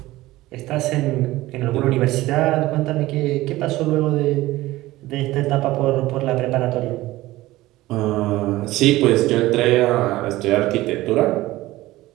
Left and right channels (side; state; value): left; quieter; 17.6 dB